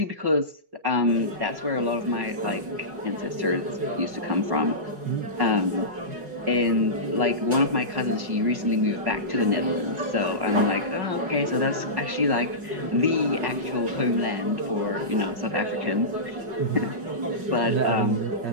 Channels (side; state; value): left; late; 5.4 ms